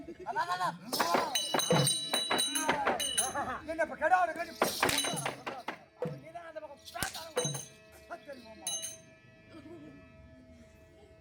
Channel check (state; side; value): identical; both; correlation 1.00